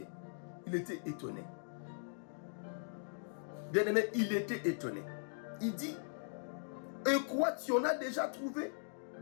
Il était étonné. Bien aimé, il était étonné. Il dit, et quoi, tu en as déjà trouvé,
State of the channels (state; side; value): silent; right; digital silence